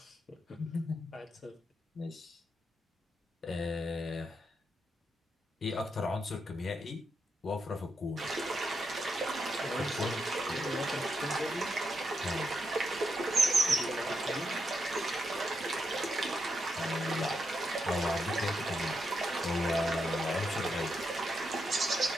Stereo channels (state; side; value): normal; both; correlation 0.82